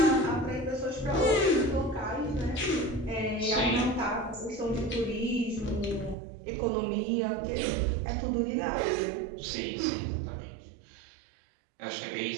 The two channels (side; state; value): left; drops out; at 6.2 s